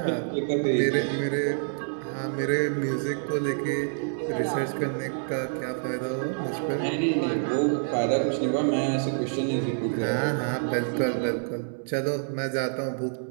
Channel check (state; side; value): silent; left; 60 dB below the other